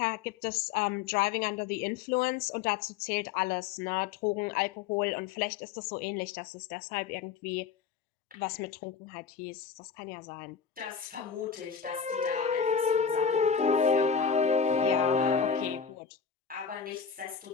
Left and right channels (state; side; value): quieter; right; 6.7 dB